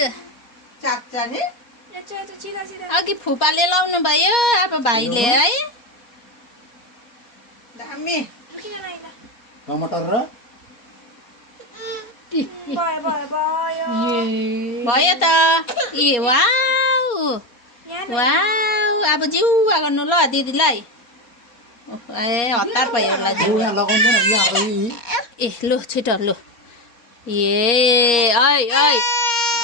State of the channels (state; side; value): late; right; 4.2 ms